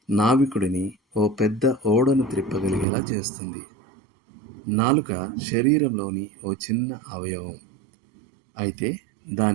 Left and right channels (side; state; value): left; drops out; at 2.9 s